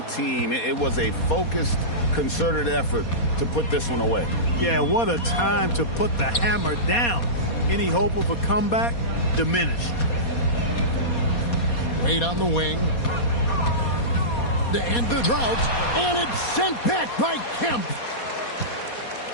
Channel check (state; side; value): late; right; 4.2 ms